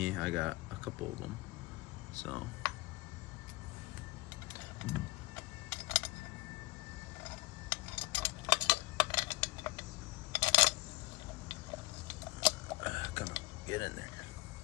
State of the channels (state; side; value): quieter; right; 21.3 dB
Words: I got a couple of them. So come on, get in there.